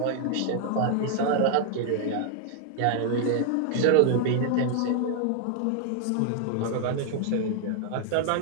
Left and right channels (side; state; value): both; different; correlation 0.00